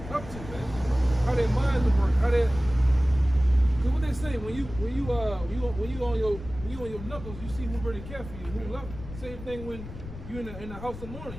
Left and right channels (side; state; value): left; noise; rumble, 12 dB below the sound